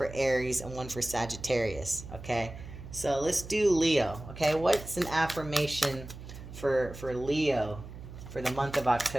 Aries, and one for Sagittarius, okay? So let's do Leo, okay? What's an affirmation for Leo for the month of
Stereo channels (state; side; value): noise; right; hum, 13 dB below the sound